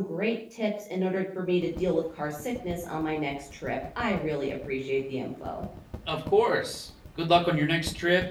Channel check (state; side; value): identical; both; correlation 1.00